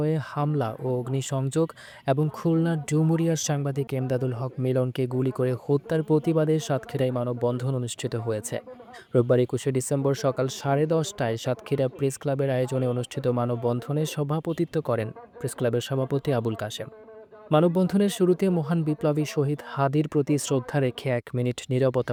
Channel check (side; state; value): both; identical; correlation 1.00